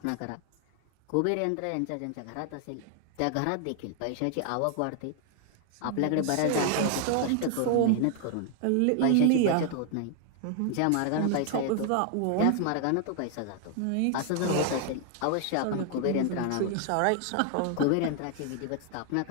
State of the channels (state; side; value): different; both; correlation 0.00